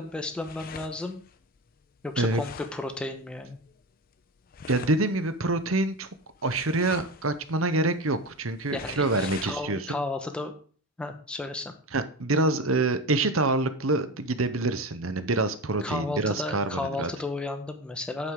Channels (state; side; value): normal; both; correlation 0.25